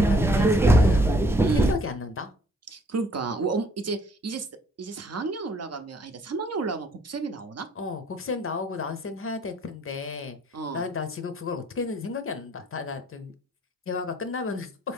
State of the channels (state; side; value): normal; both; correlation 0.63